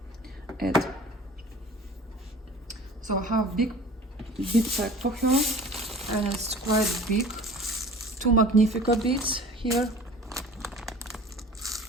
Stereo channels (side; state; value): both; normal; correlation 0.43